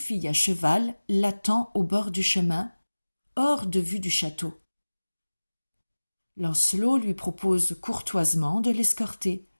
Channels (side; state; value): both; inverted; correlation -1.00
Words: à cheval l'attend au bord du chemin, hors de vue du château. Lancelot lui propose courtoisement de l'escorter.